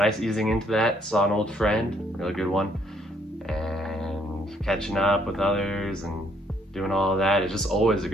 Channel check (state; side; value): normal; both; correlation 0.68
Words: easing into that. Saw an old friend, really good one, and catching up with others and doing all of that. It's just always a